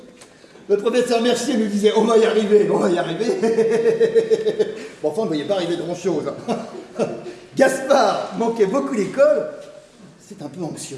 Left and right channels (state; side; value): identical; both; correlation 1.00